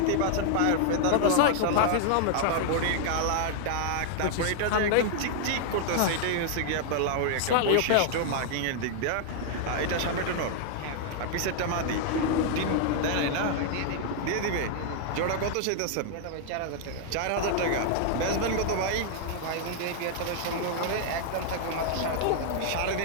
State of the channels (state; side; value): different; both; correlation -0.01